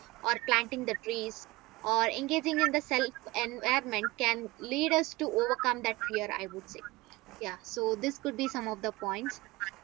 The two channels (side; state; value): left; quieter; 21.3 dB